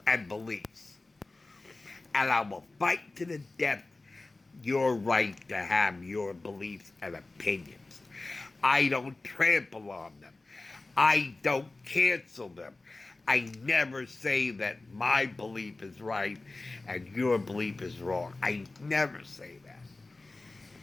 and beliefs. And I will fight to the death your right to have your beliefs and opinions. I don't trample on them. I don't cancel them. I never say that my belief is right and your belief is wrong. I never say that.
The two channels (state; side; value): quieter; right; 3.3 dB